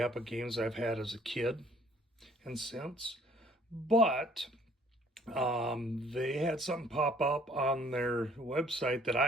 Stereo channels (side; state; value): both; normal; correlation 0.59